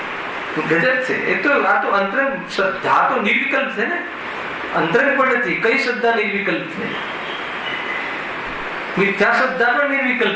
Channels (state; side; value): identical; both; correlation 1.00